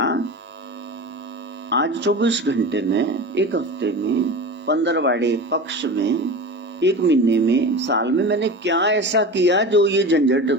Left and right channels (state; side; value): normal; both; correlation 0.30